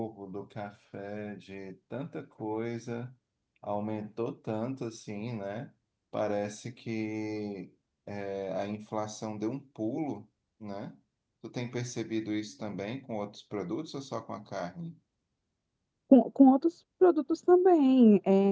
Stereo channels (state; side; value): identical; both; correlation 1.00